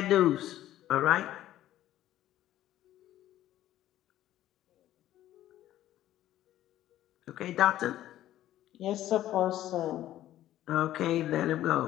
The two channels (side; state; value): right; quieter; 13.3 dB